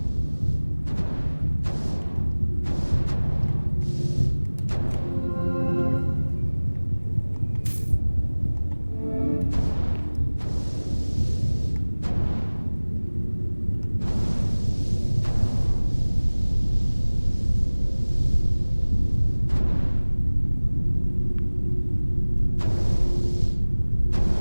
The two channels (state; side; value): inverted; both; correlation -1.00